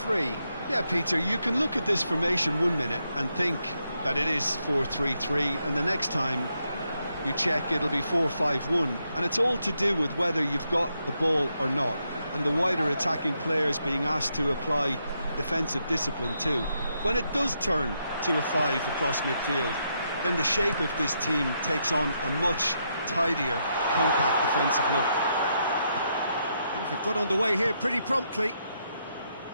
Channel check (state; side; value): inverted; both; correlation -0.80